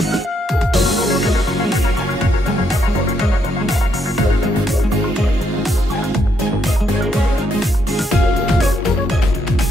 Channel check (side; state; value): both; normal; correlation 0.75